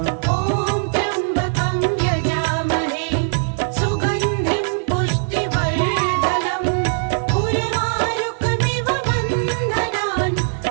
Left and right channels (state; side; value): silent; left; 66 dB below the other